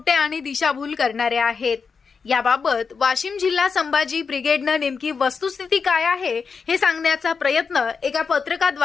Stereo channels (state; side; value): quieter; right; 5.4 dB